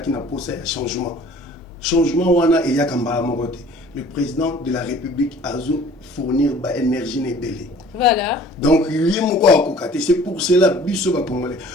qui n'a pas un changement changement wana et ya kambala mokote. Le président de la République a fournir ba énergie nebele. Voilà. Donc c'est pour cela biso ba congolais.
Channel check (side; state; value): both; normal; correlation 0.50